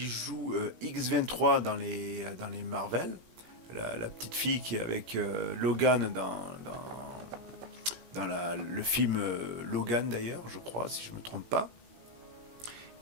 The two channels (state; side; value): late; left; 17 ms